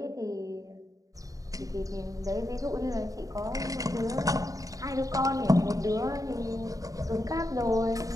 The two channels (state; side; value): late; left; 0.17 ms